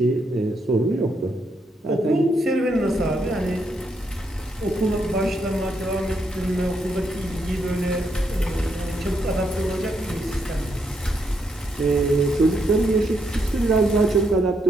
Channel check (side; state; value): both; normal; correlation 0.78